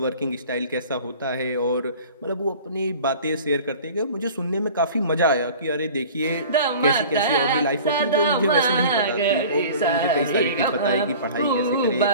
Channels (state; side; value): inverted; both; correlation -0.42